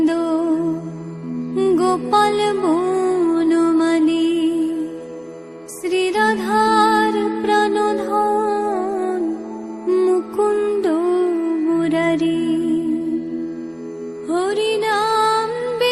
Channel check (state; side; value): identical; both; correlation 1.00